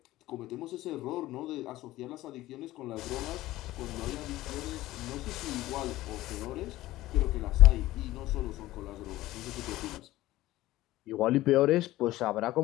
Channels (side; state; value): right; quieter; 16.5 dB